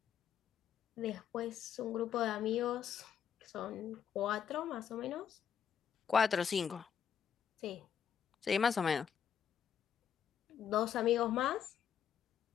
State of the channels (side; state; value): right; quieter; 8.3 dB